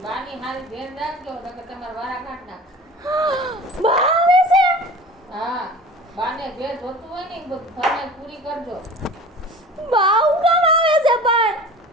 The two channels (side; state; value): both; normal; correlation 0.39